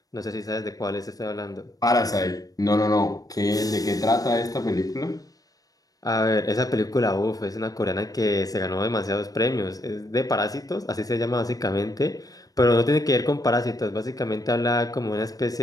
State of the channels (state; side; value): late; right; 0.18 ms